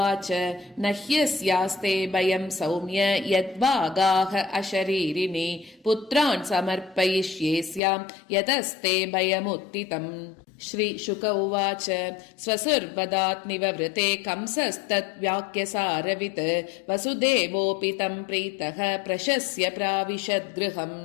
न ह्यस्यास्ते भयं सौम्य यद्वागाः अशरीरिणि पुत्रान् समर्पयिष्ये स्यां यतस्ते भयमुत्थितम् श्रीशुक उवाच स्वसुर्वदात् निववृते कंसस्तद्वाक्यसारवित् वसुदेवोऽपि तं प्रीतः प्रशस्य प्राविशद्गृहम्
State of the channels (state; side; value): drops out; right; at 7.8 s